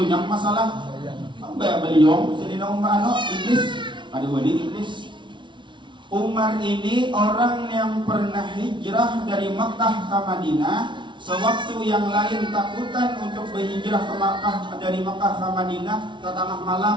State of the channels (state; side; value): late; left; 0.24 ms